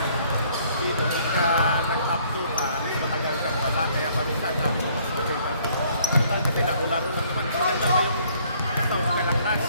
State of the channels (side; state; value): both; inverted; correlation -0.62